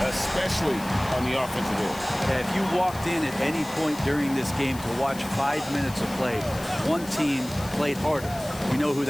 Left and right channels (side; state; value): left; noise; hiss, 16 dB below the sound